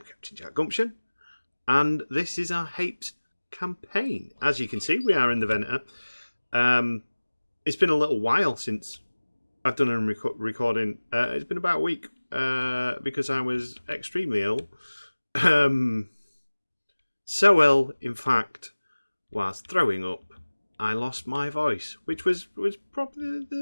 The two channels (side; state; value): both; inverted; correlation -1.00